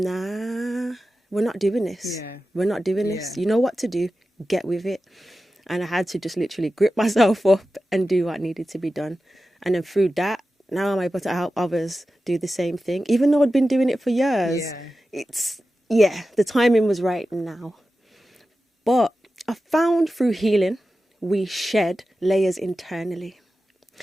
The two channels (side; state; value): both; normal; correlation 0.93